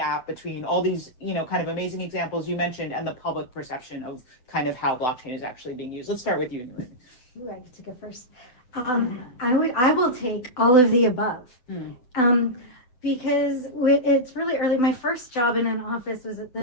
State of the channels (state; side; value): late; right; 7.9 ms